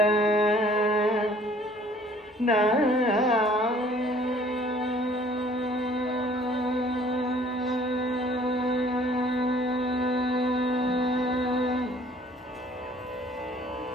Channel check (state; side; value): normal; both; correlation 0.56